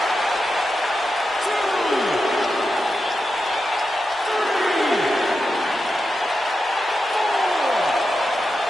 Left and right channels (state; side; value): normal; both; correlation 0.89